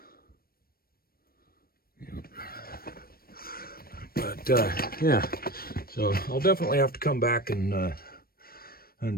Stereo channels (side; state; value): right; late; 0.44 ms